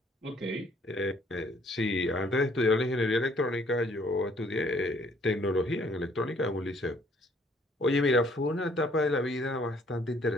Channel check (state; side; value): normal; both; correlation 0.63